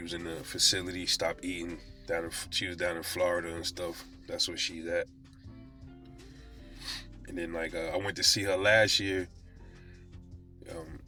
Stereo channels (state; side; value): identical; both; correlation 1.00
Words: was in the facility, stopped eating. She was down in Florida and stuff. That's where she's at. And then I went to see her last year.